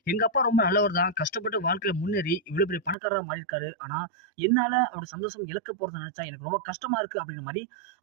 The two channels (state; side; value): drops out; left; at 3.0 s